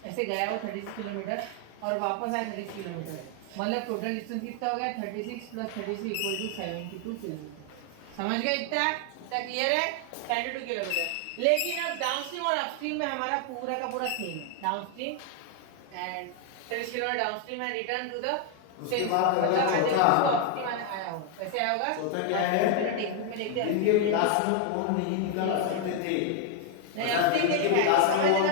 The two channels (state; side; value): different; both; correlation 0.00